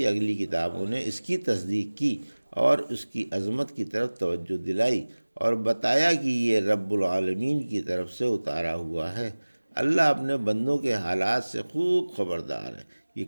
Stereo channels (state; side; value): inverted; both; correlation -1.00